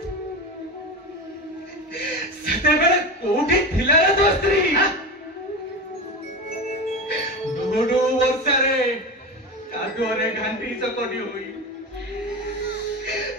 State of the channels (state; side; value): normal; both; correlation 0.24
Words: सेते बेले कोठी थिला रे तो स्त्री डोडो वर्षारे कादुरे घांटी चकटी होई